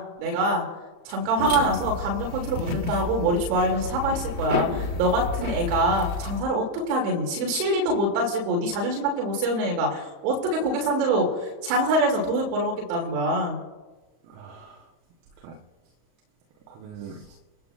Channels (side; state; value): left; late; 35 ms